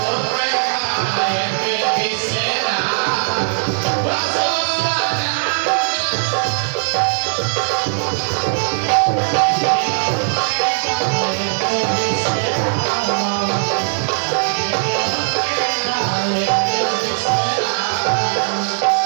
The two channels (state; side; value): silent; left; digital silence